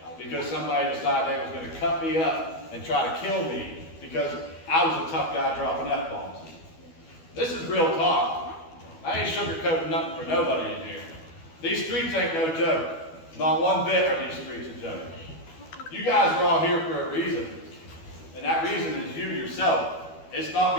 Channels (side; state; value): right; late; 12 ms